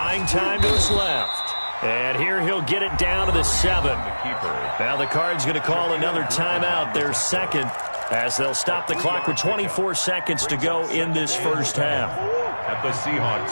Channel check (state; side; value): inverted; both; correlation -1.00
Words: time to his left. And here he'll get it down to the 7. Now the Cards going to call another timeout, their 2nd, as they'll stop the clock with 24 seconds to go in this first half. At the Seahawks